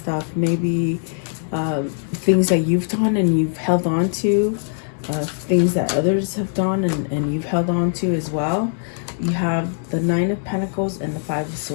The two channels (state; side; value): silent; right; digital silence